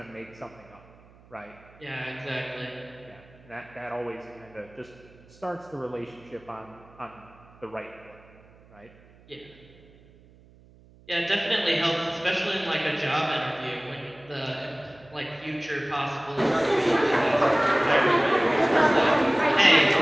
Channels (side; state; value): right; noise; hum, 26 dB below the sound